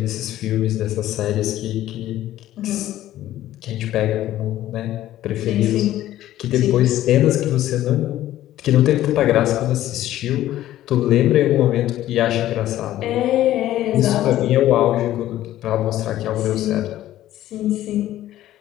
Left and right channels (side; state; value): right; quieter; 13.7 dB